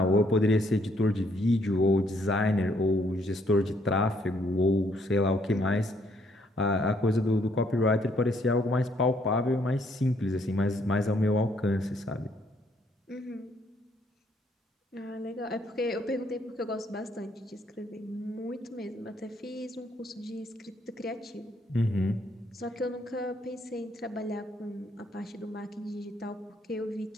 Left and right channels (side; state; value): both; normal; correlation 0.69